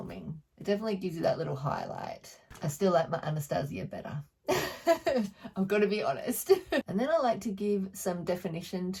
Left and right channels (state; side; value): identical; both; correlation 1.00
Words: It definitely gives you that little highlight. I still like my Anastasia better. I've got to be honest. And then I like to give some definition